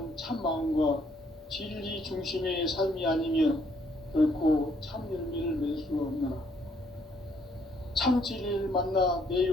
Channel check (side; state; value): both; normal; correlation 0.68